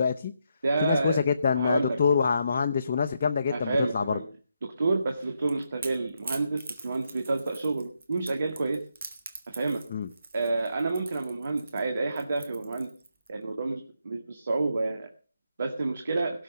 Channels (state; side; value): inverted; both; correlation -0.81